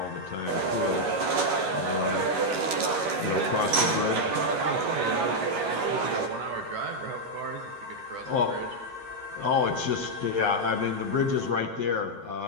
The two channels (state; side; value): late; left; 11 ms